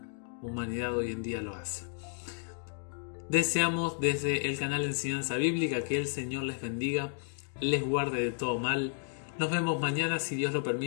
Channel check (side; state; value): right; silent; 56 dB below the other